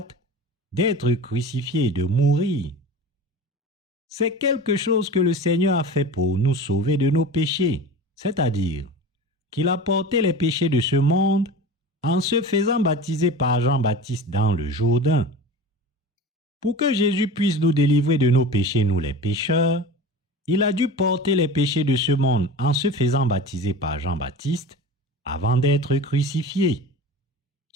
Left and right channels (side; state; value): both; normal; correlation 0.33